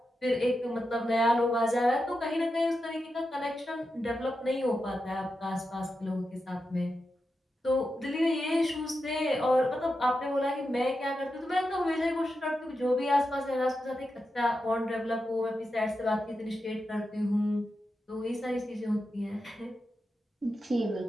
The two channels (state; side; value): normal; both; correlation 0.89